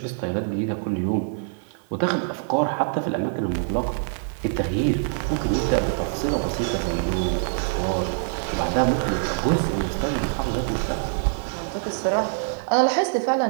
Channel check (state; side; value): silent; left; digital silence